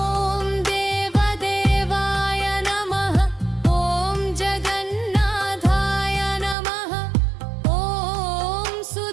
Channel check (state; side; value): drops out; left; at 6.6 s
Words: देवदेवाय नमः। ॐ जगन्नाथाय नमः। ॐ